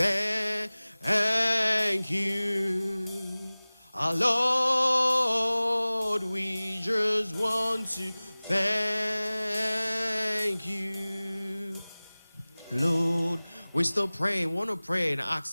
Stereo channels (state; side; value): inverted; both; correlation -0.99